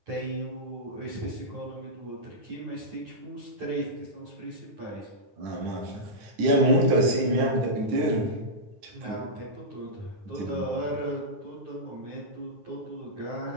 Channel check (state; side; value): late; left; 9.9 ms